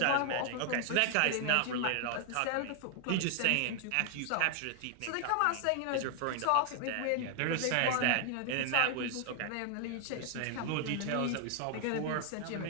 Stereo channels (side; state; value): both; different; correlation 0.00